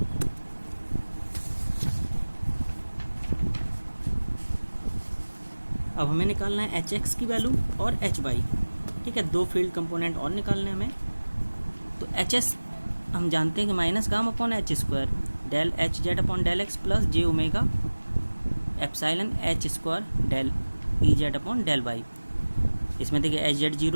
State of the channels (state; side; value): inverted; both; correlation -1.00